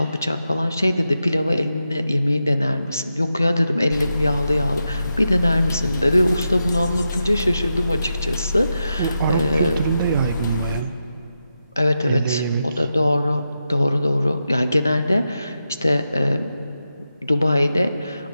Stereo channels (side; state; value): both; inverted; correlation -0.88